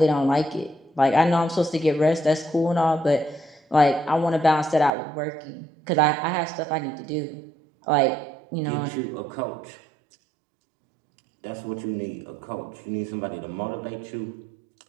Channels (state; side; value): drops out; left; at 4.9 s